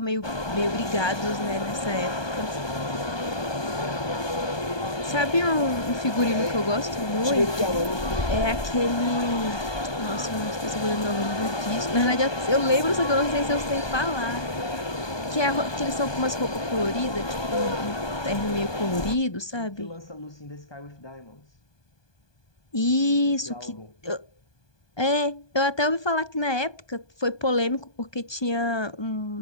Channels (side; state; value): right; late; 1.2 ms